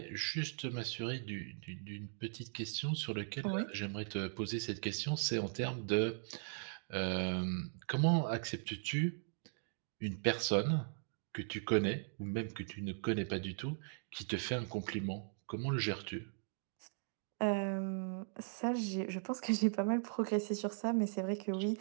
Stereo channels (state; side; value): silent; left; digital silence